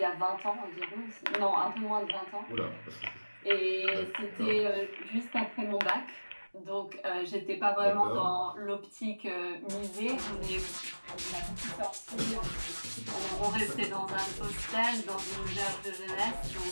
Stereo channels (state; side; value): inverted; both; correlation -1.00